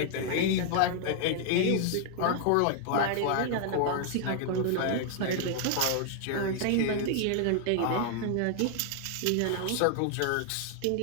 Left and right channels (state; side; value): different; both; correlation 0.00